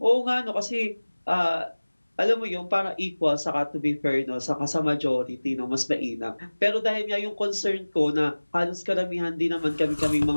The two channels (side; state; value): both; inverted; correlation -1.00